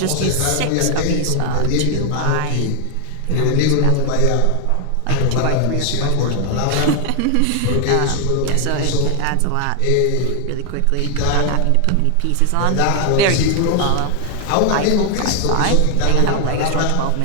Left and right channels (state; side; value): different; both; correlation 0.00